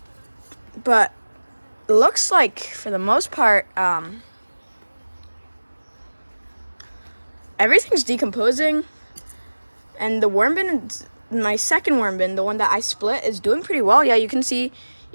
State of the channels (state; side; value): inverted; both; correlation -1.00